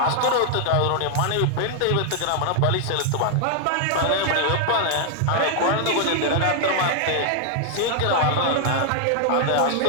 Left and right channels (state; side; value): different; both; correlation 0.00